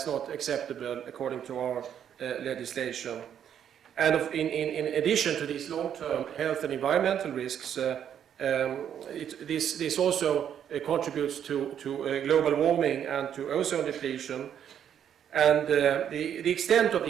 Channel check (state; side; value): quieter; left; 9.2 dB